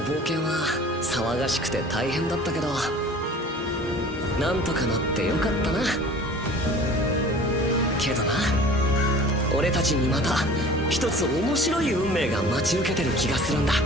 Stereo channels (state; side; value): normal; both; correlation 0.44